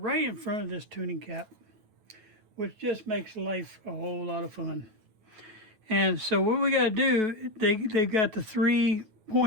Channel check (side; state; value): left; late; 9.2 ms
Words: in front of this tuning cap, which just makes life a whole lot of fun. And so what we got to do, they've got the 3